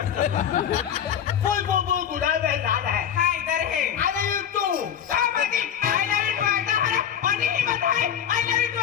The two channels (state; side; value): quieter; right; 9.1 dB